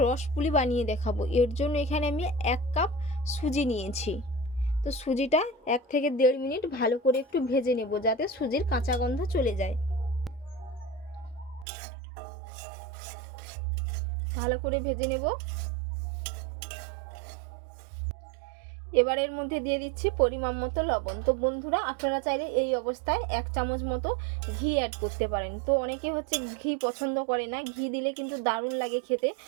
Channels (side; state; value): left; drops out; at 11.7 s